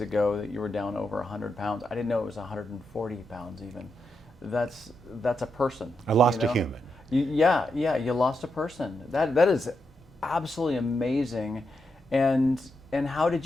that you were down over 100 pounds. I didn't know it was 140 pounds even. That's a person. I lost a human. You lost a person. That is absolutely amazing. And how did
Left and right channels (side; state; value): both; normal; correlation 0.84